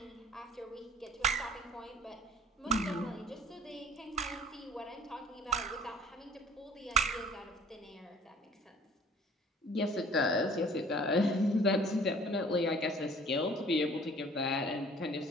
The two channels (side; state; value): both; normal; correlation 0.49